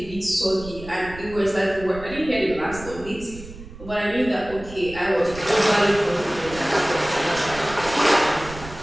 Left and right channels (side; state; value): right; noise; rumble, 15 dB below the sound